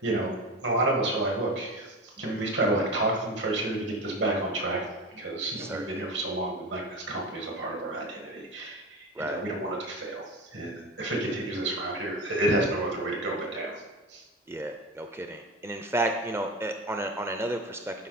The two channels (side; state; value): both; normal; correlation 0.26